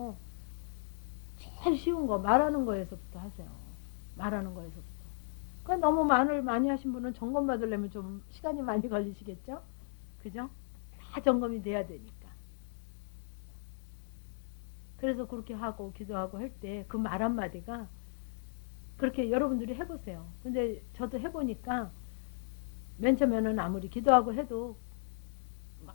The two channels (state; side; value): silent; right; digital silence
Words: 제일 쉬운 거, 말하는 거에서부터 하세요. 말하는 거에서부터. 그러니까 너무 말을 많이 하신 분은 점검 받으려면 좀 시간이 많이 걸리시겠죠? 그죠? 다 점검이 돼야 되니까. 그래서 그렇게 하고 기도하고 할 때 그 말 한마디가 그렇게 여러분들이 해보세요. 근데 저도 해보니까 맨 처음에는 아무리 기도하고 해도